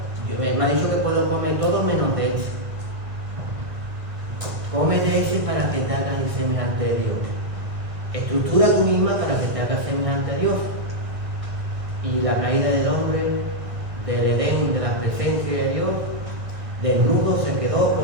me ha dicho que puedo comer todo menos de ese. Come de ese para que te hagas semejante a Dios. Estructura tú misma para que te hagas semejante a Dios. Y la caída del hombre, del Edén, de la presencia de Dios, desnudo se quedó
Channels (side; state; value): left; late; 1.6 ms